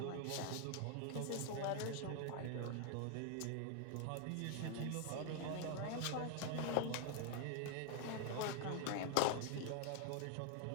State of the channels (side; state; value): both; different; correlation 0.01